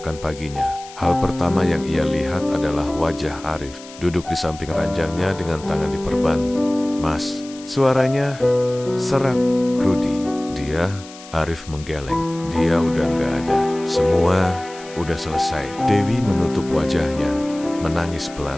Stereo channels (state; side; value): noise; left; hiss, 18 dB below the sound